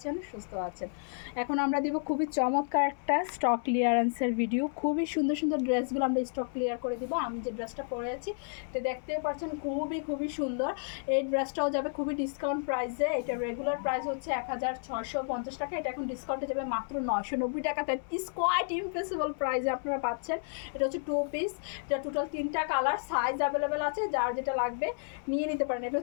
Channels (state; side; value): silent; right; 57 dB below the other